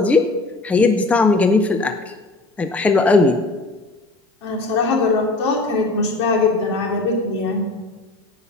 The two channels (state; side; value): quieter; right; 3.1 dB